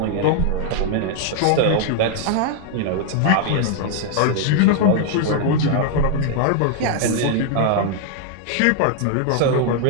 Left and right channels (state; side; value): different; both; correlation 0.00